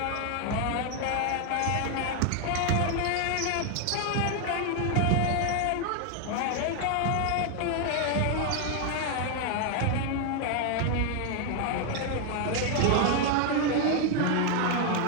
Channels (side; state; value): both; different; correlation 0.01